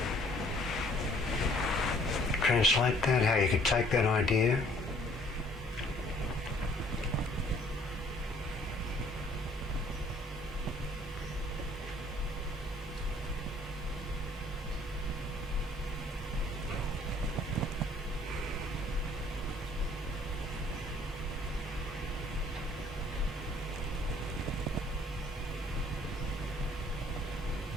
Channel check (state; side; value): normal; both; correlation 0.59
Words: translate that, how you could take that idea